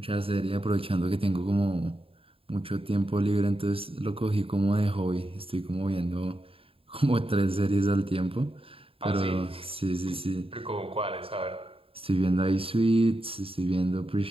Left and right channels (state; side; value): late; left; 0.27 ms